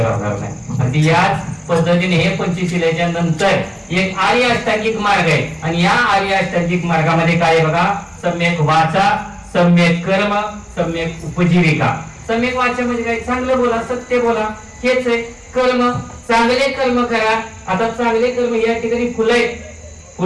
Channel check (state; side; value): identical; both; correlation 1.00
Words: राहणार नाही. आणि याच पद्धतीने हे पंचशिलेच्या नंतर एक आर्य अष्टांगिक मार्ग आहे आणि या आर्य अष्टांगिक मार्गामध्ये काय बघा, सम्यक वाचा, सम्यक कर्म, सम्यक उपजीविका. सम्यक वाचा म्हणजे काय, चांगलं बोला, सत्य बोला, हेच आहे. कर्म, चांगले कर्म करा. आता चांगले कर्म या ठिकाणी फुलं आहेत,